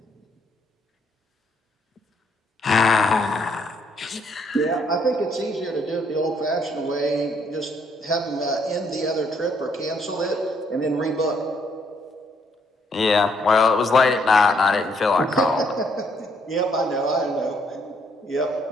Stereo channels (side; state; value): both; normal; correlation 0.69